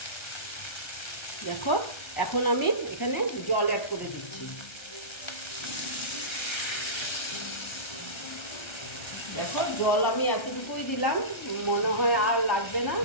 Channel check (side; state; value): right; late; 1.3 ms